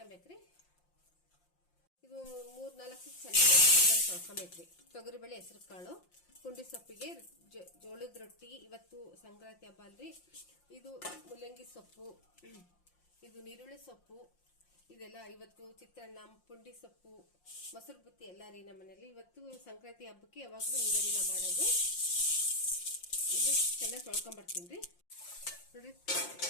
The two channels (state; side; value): late; right; 5.7 ms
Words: ಇದು 3-4 ಚೆನ್ನಾಗಿ ತೊಳ್ಕೊಬೇಕ್ರಿ. ತೊಗರಿಬೇಳೆ, ಹೆಸರು ಕಾಳು, ಪುಂಡಿ ಸೊಪ್ಪಿಗೆ ಜೋಳದ ರೊಟ್ಟಿ. ಇವತ್ತು ಸಂಕ್ರಾಂತಿ ಹಬ್ಬ ಅಲ್ರಿ. ಇದು ಮುಲ್ಲಂಗಿ ಸೊಪ್ಪು, ಇದು ನೀರುಳ್ಳಿ ಸೊಪ್ಪು, ಇದೆಲ್ಲ ಇವತ್ತು ಚಿತ್ರಾನ್ನ, ಪುಂಡಿ ಸೊಪ್ಪು, ಮೊಸರು ಬುತ್ತಿ ಎಲ್ಲ ರೀ ನಮ್ಮ ಮನೇಲಿ. ಇವತ್ತು ಸಂಕ್ರಾಂತಿ ಹಬ್ಬಕ್ಕೆ ಯಾವಾಗಲೂ ಹಿಂಗರಿನ ಮಾಡೋದು. ಇದು ಚೆನ್ನಾಗಿ ತೊಳ್ಕೊಂಬರ್ತೀನಿ ರೀ ನೋಡ್ರಿ.